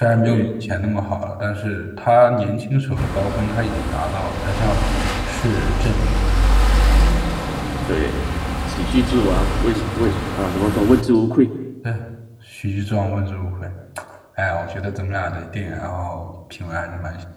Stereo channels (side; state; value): both; identical; correlation 1.00